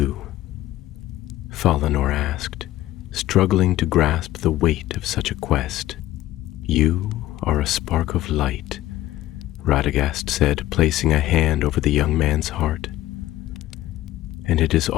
Valinor asked, struggling to grasp the weight of such a quest. "You are a spark of light," Radagast said, placing a hand over the young man's heart. "And it is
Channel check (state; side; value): quieter; right; 15.0 dB